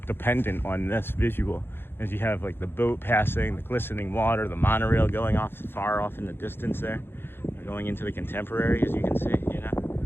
dependent on this visual. As you have like the boat passing, the glistening water, the monorail going off far off in the distance there, going into the contemporary, as you can see, you know.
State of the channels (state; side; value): late; right; 0.10 ms